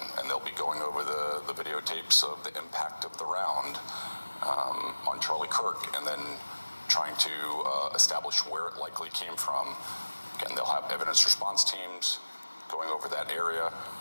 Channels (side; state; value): both; inverted; correlation -1.00